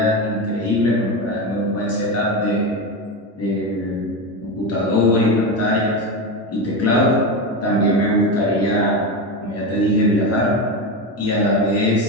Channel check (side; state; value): both; normal; correlation 0.17